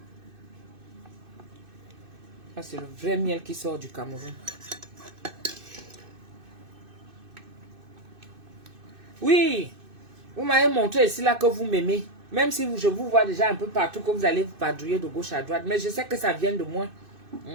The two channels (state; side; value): late; left; 2.6 ms